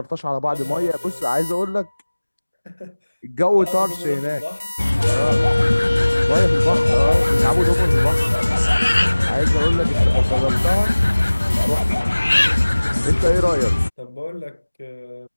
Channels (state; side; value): inverted; both; correlation -1.00